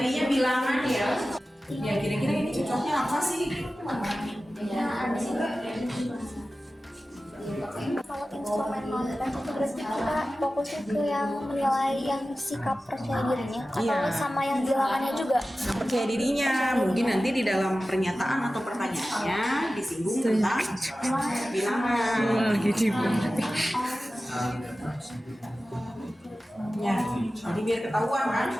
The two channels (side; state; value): both; normal; correlation 0.95